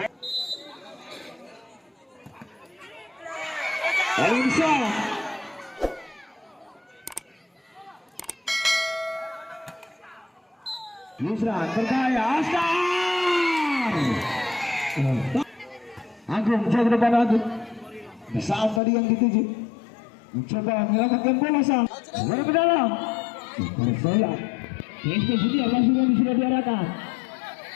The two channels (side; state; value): right; drops out; at 18.8 s